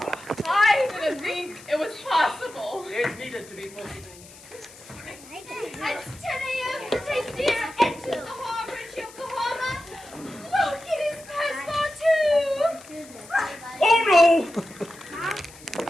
I didn't think it was possible. It needed to be possible. At 10 a.m., the Tastyr enters the harbor at Yokohama. Look, it is passepartout! Oh no!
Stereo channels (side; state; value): left; noise; hiss, 20 dB below the sound